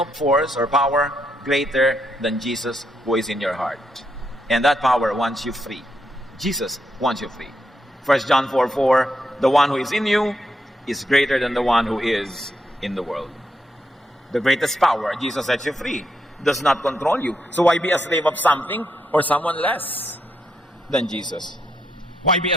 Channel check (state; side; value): normal; both; correlation 0.80